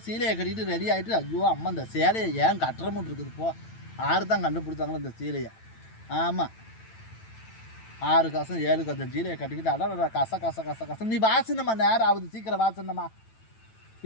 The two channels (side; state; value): right; late; 9.0 ms